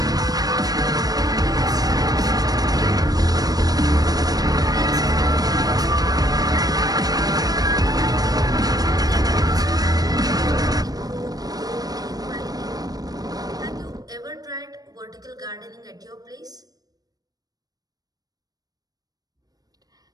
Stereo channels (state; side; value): late; left; 0.18 ms